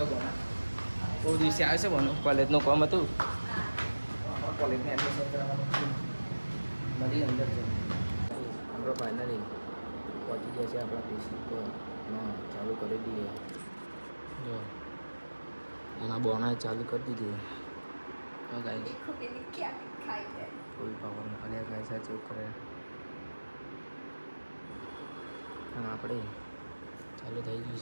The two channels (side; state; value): both; inverted; correlation -1.00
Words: બોના? બહુ દિવસે આવે છે બોનો. કોલેજનું કામ હતું. કોલેજમાં એડમિશન કરાવવાનું મળી અંદર છે. આપણે ફાઇનલી પહોંચી ગયા છે આપણા પીસી પર. હા ચાલુ કરી દઈએ. જો એના બોનાએ ચાલુ કરી દીધું. હા ગાઈસ ફૂલ પાવર અલ્યા ગાઈસ આ ચેક કરે. આમ આપણે ચાલુ થઈ ગયું